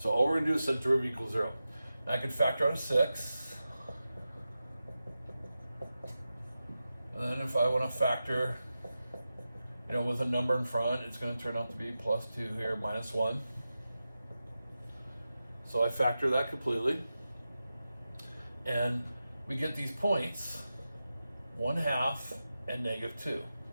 all we're going to do is set derivative equals 0. Now I can factor out a 6. And then if I want to factor, with a number in front, it's going to turn out to be plus 2 here, minus 1. So I factor that completely. And we get these points, 1/2 and -2.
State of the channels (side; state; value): both; inverted; correlation -0.92